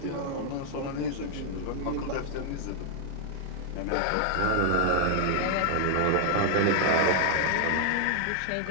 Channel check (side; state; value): both; different; correlation 0.00